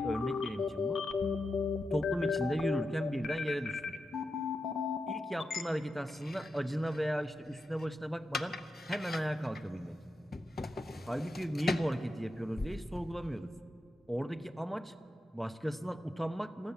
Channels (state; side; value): normal; both; correlation 0.88